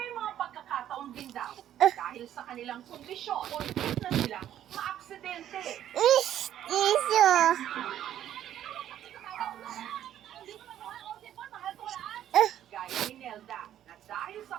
mga pagkakataon din daw dahil sa kanilang kondisyon o na silang maaksidente. Iso. Gaya ni Nelda na dahil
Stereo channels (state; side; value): quieter; left; 11.3 dB